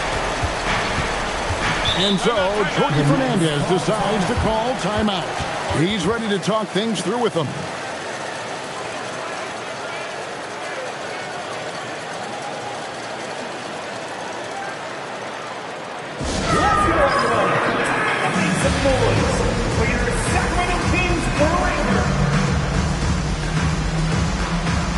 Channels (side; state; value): both; identical; correlation 1.00